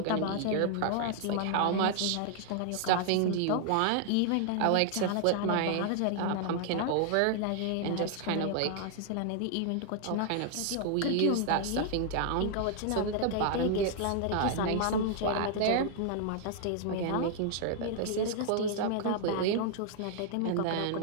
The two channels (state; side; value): different; both; correlation 0.00